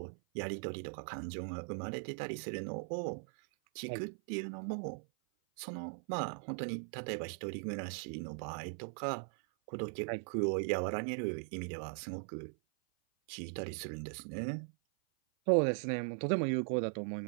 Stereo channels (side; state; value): left; silent; 51 dB below the other